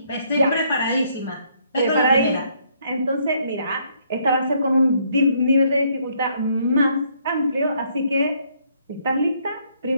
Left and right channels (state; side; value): inverted; both; correlation -0.68